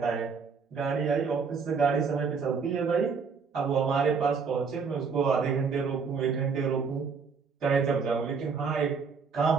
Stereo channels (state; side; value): quieter; left; 5.5 dB